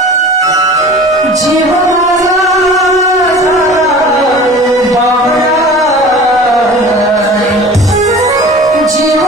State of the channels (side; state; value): both; normal; correlation 0.41